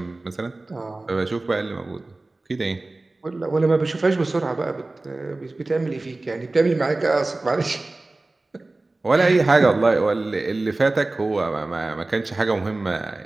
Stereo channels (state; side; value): quieter; left; 3.0 dB